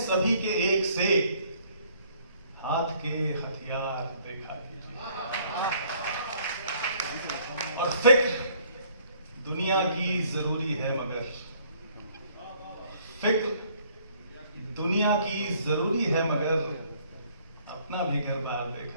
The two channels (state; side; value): inverted; both; correlation -0.61